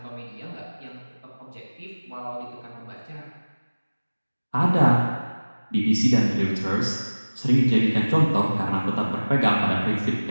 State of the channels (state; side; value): inverted; both; correlation -1.00